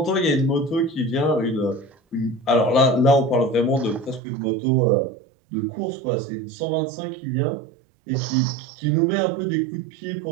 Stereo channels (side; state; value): left; drops out; at 4.2 s